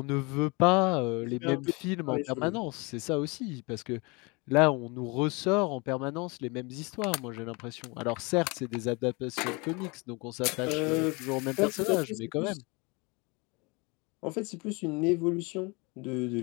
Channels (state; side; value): quieter; right; 28.0 dB